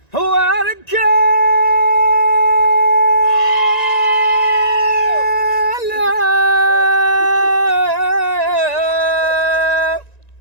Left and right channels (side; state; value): right; late; 1.9 ms